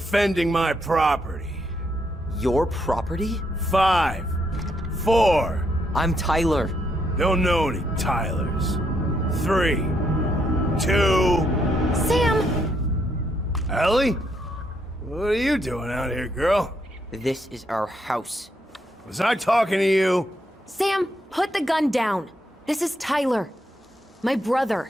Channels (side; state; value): both; normal; correlation 0.76